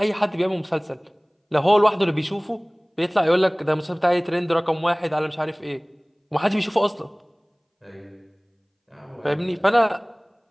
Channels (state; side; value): identical; both; correlation 1.00